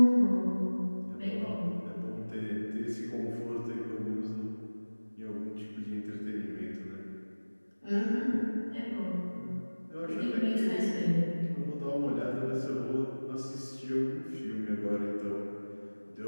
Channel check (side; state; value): both; inverted; correlation -1.00